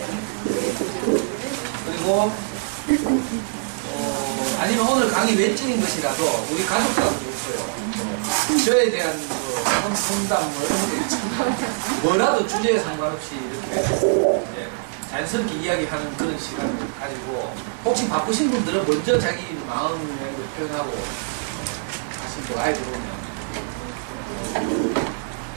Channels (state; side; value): silent; left; digital silence